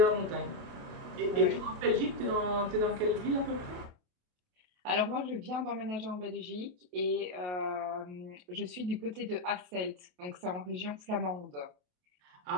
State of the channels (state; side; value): late; left; 28 ms